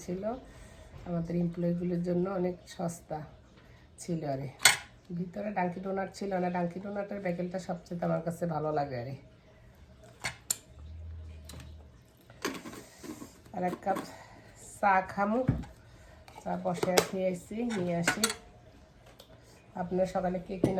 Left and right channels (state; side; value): identical; both; correlation 1.00